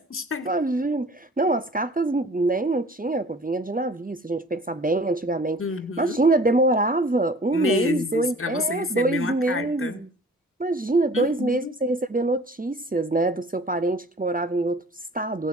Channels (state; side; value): normal; both; correlation 0.48